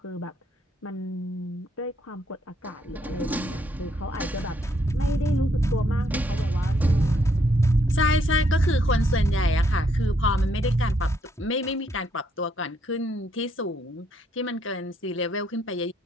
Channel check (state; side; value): normal; both; correlation 0.72